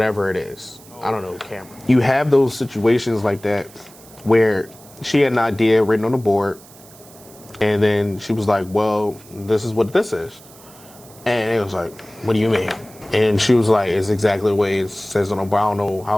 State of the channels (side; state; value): right; noise; hiss, 22 dB below the sound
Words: it is. I don't know, camera. You have those situations like that where she had an idea written on the board, and then she was like, well, this is what this is. And it was like, what do you mean? And she was like, it's exactly the way it says on the board. I don't know